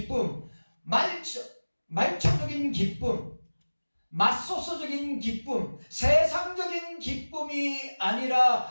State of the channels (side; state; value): both; inverted; correlation -1.00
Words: 말초적인 기쁨, 맛소소적인 기쁨, 세상적인 기쁨이